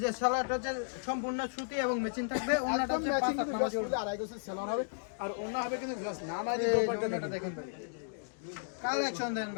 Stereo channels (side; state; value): right; silent; digital silence